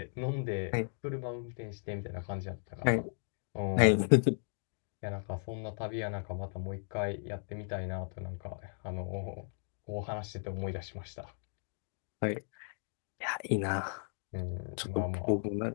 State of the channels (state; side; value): silent; right; digital silence